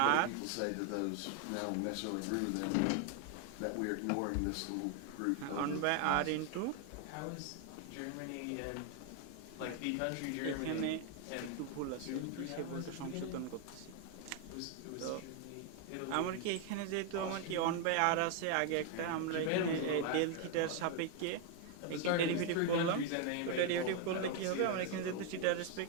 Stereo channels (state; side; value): different; both; correlation 0.01